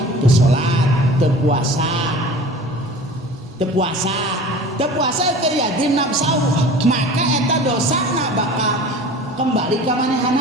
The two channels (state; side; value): normal; both; correlation 0.40